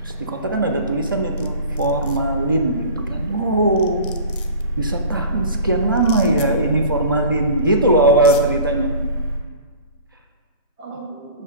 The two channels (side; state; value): both; inverted; correlation -0.41